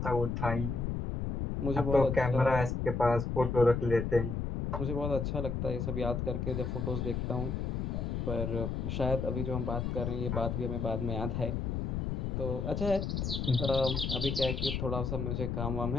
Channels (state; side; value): noise; left; rumble, 1 dB below the sound